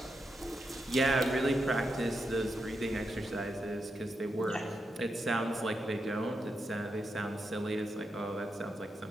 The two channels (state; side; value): normal; both; correlation 0.84